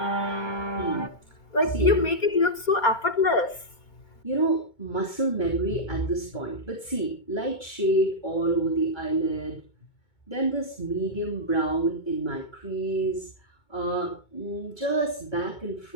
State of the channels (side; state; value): right; late; 2.2 ms